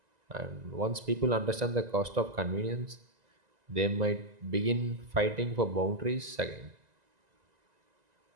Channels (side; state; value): left; late; 2.0 ms